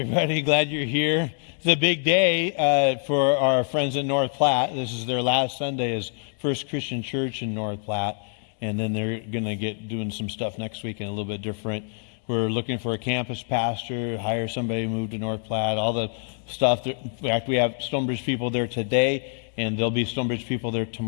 Glad you're here. It's a big day for our friends in North Platte. This is their last Sunday as First Christian Church in North Platte, and then they're going to get doing some stuff next week and a little bit different. We're looking for a campus pastor, hire somebody to move to North Platte, all the stuff. In fact, we have Stonebridge people there today, and there'll be Stonebridge people there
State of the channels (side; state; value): right; silent; 61 dB below the other